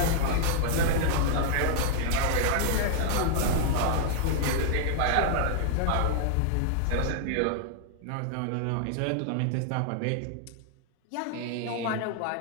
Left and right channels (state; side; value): different; both; correlation -0.01